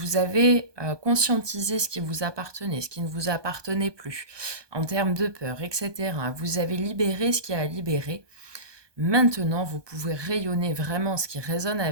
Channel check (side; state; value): left; late; 1.2 ms